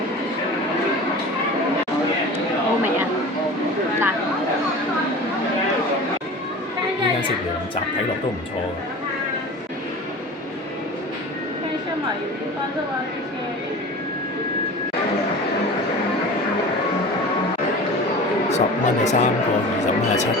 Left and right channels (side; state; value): both; normal; correlation 0.36